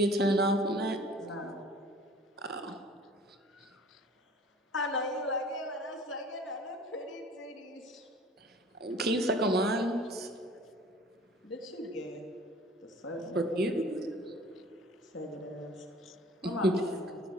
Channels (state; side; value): normal; both; correlation 0.48